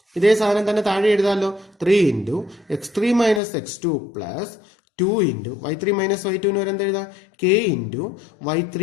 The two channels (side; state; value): right; drops out; at 3.4 s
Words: ഇതേ സാധനം തന്നെ താഴെ എഴുതാമല്ലോ. 3 into x3 minus x2 plus 2 into y3 minus y2 വരെ എന്താ എഴുതാം? k into